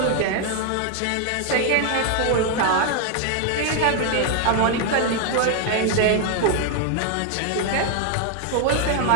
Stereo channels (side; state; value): both; different; correlation 0.00